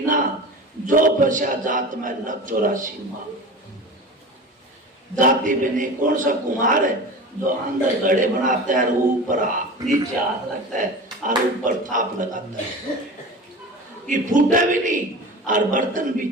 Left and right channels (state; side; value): normal; both; correlation 0.33